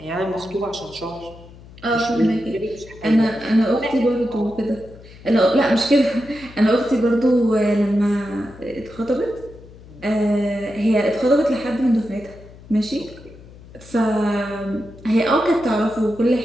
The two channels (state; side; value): noise; left; hum, 20 dB below the sound